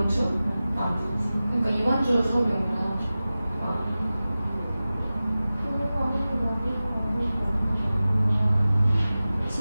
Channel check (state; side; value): inverted; both; correlation -0.96